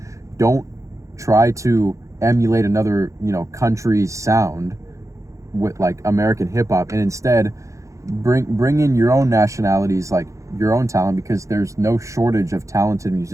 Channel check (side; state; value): left; late; 0.15 ms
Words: don't try to emulate another country's sound with like American hip hop, and instead bring in your own nationalities, like your own talent, because there's no shortage of talented